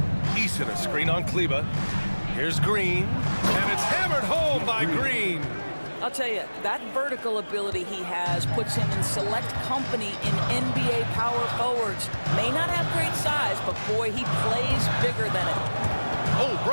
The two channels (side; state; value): both; inverted; correlation -1.00